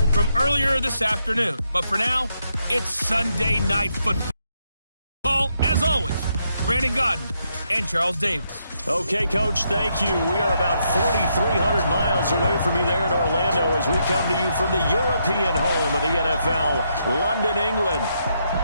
from earlier this afternoon. But for now, it's Sunday Night Football. As always, Brandon Godden and Charles Davis. Okay, Coach, thank you. We are about 4,300 miles away from you there in Orlando as we come to you from the European home of the NFL, London, England.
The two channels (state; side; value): inverted; both; correlation -0.78